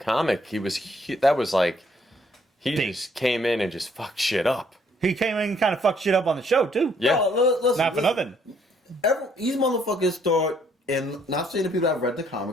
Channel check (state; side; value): normal; both; correlation 0.66